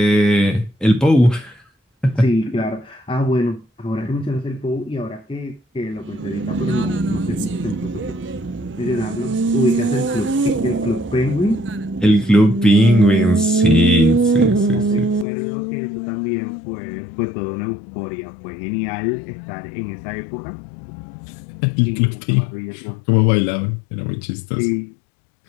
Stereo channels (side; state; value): right; drops out; at 15.2 s